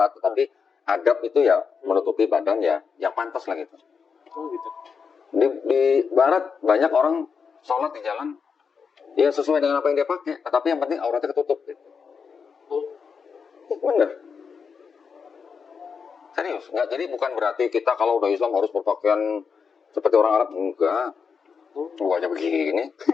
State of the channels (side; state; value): right; quieter; 5.9 dB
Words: tapi adab itu ya menutupi badan ya yang pantas lah gitu. Oh gitu. Di barat banyak orang sholat di jalan ya sesuai dengan apa yang dia pakai, tapi yang penting auratnya ketutup gitu. Bener. Serius, nggak, jadi bukan berarti kita kalau udah Islam harus berpakaian seperti orang Arab, enggak. Gua aja begini.